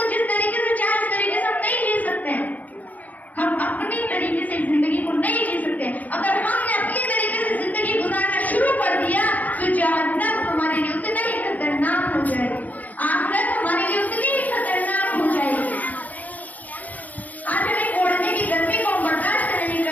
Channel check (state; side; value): late; right; 0.078 ms